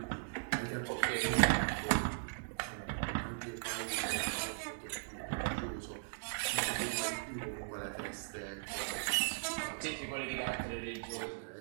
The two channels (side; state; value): left; silent; digital silence